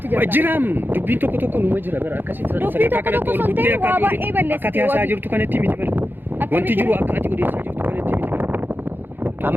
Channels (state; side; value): late; left; 0.096 ms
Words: jirta jiram dubbiin tokko numa jira bar akkasitti sadarkaa kanatti ol guddee akka ati haasaa jirtu kanatti miti bar wanti jiru akka ati odeessaa jirtu kanatti miti